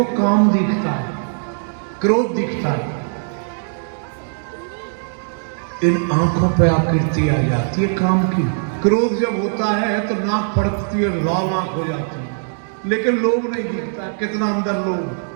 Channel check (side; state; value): left; silent; 63 dB below the other